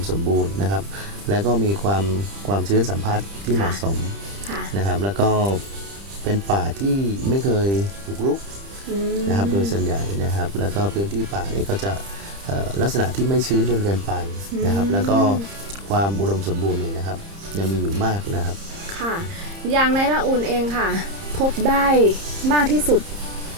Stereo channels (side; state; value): left; late; 30 ms